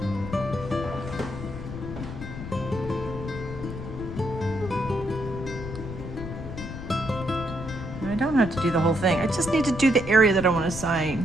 I don't have to do the whole thing. I just need to do the area that I want to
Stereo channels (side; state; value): left; noise; rumble, 9 dB below the sound